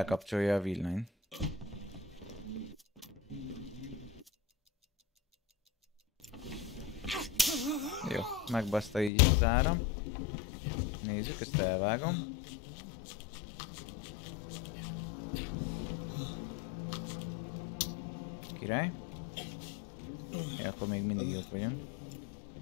a villanyt. Jó, megbaszta így az áram. Nézzük, ezt elvágom. Király. Ja, akkor még mindig jók vagyunk.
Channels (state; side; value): drops out; right; at 9.1 s